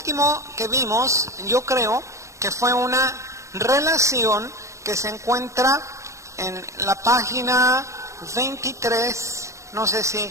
que vimos, yo creo que fue una relación que se encuentra en la página 23, no sé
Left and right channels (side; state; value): left; late; 0.15 ms